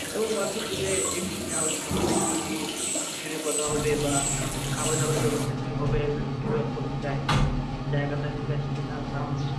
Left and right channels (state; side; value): identical; both; correlation 1.00